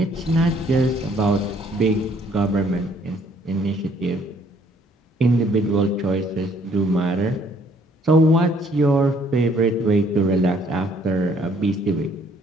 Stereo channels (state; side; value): normal; both; correlation 0.63